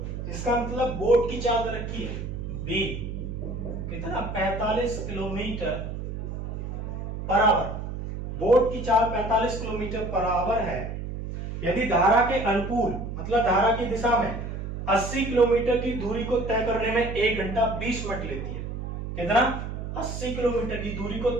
इसका मतलब बोट की चाल रखी है b, कितना 45 किलोमीटर पर आवर, बोट की चाल 45 किलोमीटर पर आवर है। यदि धारा के अनुकूल मतलब धारा की दिशा में 80 किलोमीटर की दूरी को तय करने में 1 घंटा 20 मिनट लेती है, कितना 80 किलोमीटर की दूरी को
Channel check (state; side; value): noise; right; hum, 6 dB below the sound